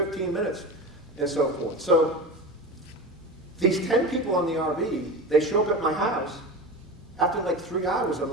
minutes. And so forth. So these 10 people on the RV, they show up at my house. After like 3 hours, I'm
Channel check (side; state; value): both; normal; correlation 0.29